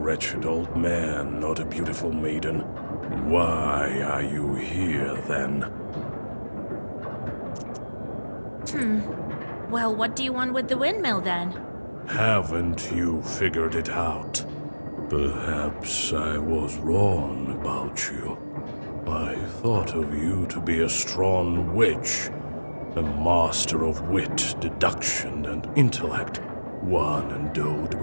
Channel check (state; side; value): inverted; both; correlation -1.00